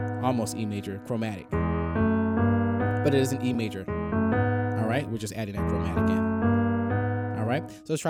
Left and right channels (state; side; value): identical; both; correlation 1.00